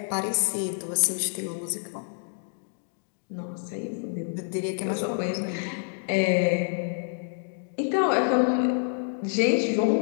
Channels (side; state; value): right; silent; digital silence